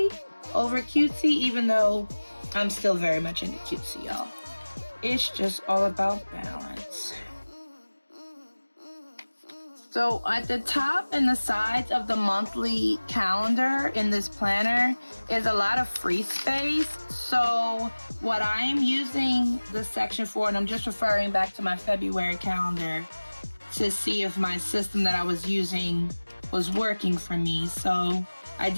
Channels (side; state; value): both; inverted; correlation -1.00